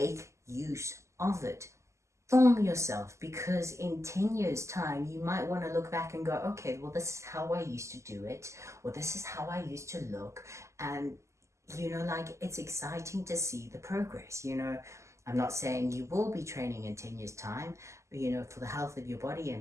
use of it. Film yourself, because in 10 years time you might want to look back and go, okay, well, this is how I used to do it, or this is how I used to look. And you know, like, it's exciting to see the progress. You know, I'm not saying you will be training in 10 years time, but you know, for the health of your body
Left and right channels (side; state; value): left; late; 0.14 ms